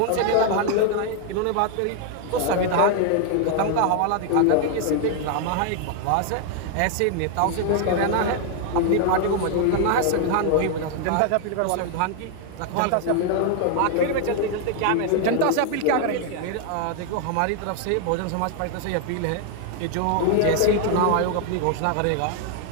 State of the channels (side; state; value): both; different; correlation 0.00